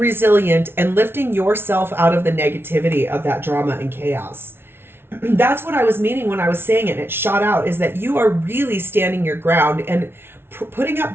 and lifting yourself out of the negativity of that drama and chaos. That's what I was meaning when I was saying it. It shot out, is that you are really standing your ground and putting up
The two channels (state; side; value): late; left; 0.11 ms